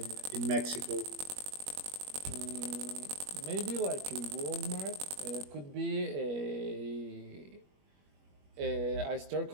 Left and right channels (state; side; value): late; left; 21 ms